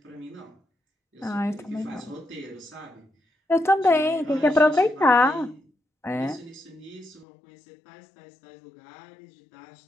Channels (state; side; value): drops out; right; at 7.2 s